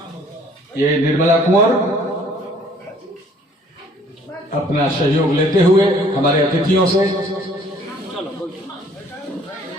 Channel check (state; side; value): normal; both; correlation 0.57